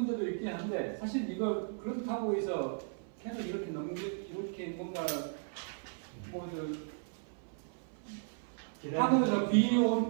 있긴 한데 사실 이거 그렇다고 해서 계속 이렇게 뭔가 하늘에서 비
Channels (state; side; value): silent; left; 54 dB below the other